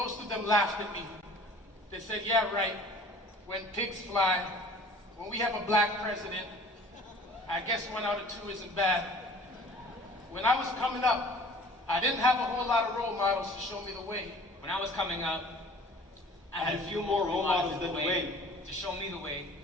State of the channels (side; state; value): both; normal; correlation 0.48